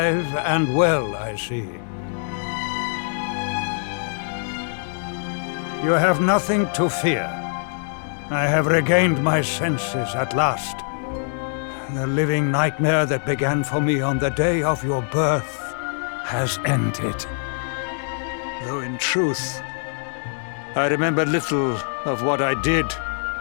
and well, I see. You have nothing to fear. I have regained my senses at last. The living nightmare that began for me on the day of your birth has ended. Though in truth, I remember little of what I did.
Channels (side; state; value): right; silent; 63 dB below the other